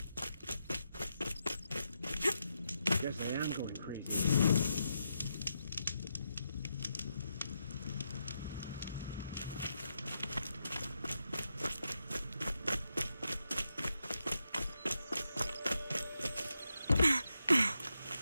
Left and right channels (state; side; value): inverted; both; correlation -0.84